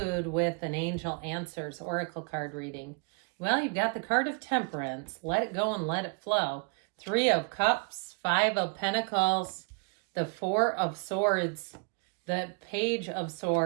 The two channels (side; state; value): left; quieter; 35.3 dB